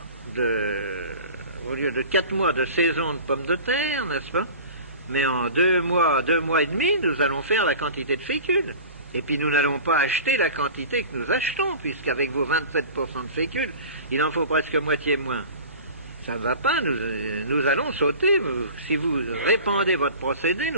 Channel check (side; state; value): both; inverted; correlation -0.38